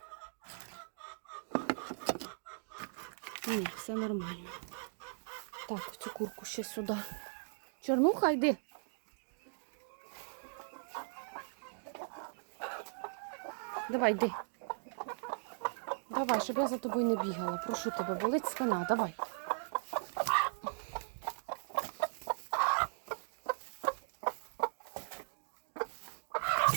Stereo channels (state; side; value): silent; left; digital silence